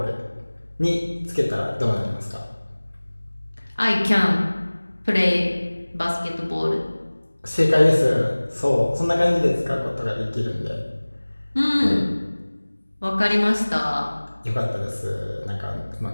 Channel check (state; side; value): inverted; both; correlation -1.00